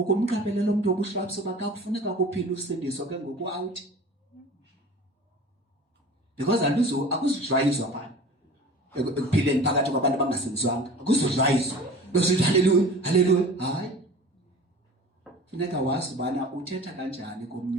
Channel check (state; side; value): normal; both; correlation 0.40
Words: umuntu wobuhlwaps uba kakufuneka kuphila usindiso ke ngoku out because akuzujwayizwa phana ekuphileni phakathi kwabantu abangasindiswanga akuzujwayizwa besithi haleluya haleluya hayi funeka wazi ubana uthetha kanjani komnye